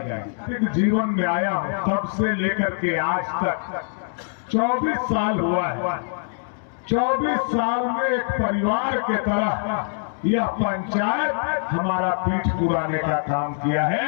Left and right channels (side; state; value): right; silent; 63 dB below the other